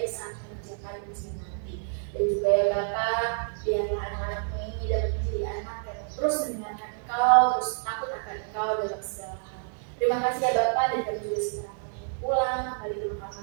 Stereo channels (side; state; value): left; silent; 59 dB below the other